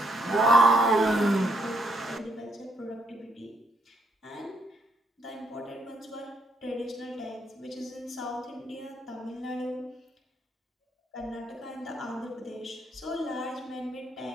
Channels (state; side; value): normal; both; correlation 0.73